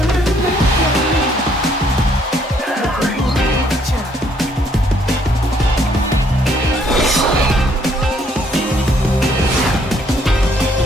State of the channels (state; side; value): normal; both; correlation 0.67